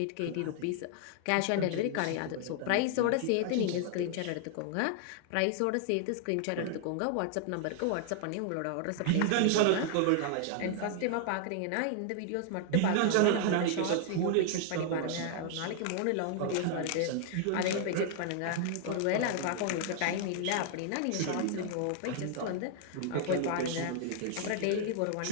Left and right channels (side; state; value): both; different; correlation 0.00